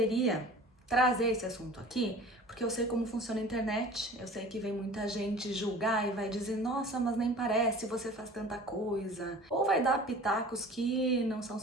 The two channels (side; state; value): both; normal; correlation 0.43